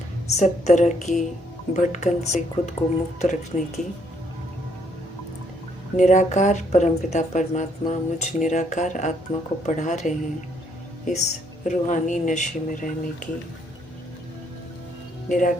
सब तरह की भटकन से खुद को मुक्त रखने की, निराकार परमपिता परमात्मा मुझ निराकार आत्मा को पढ़ा रहे हैं इस रूहानी नशे में रहने की,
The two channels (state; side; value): normal; both; correlation 0.70